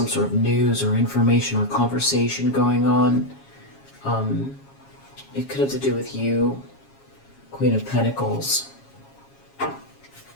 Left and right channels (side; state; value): right; late; 7.3 ms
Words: sort of news or information or conversation going on. It could have to do with you, Queen of Pentacles.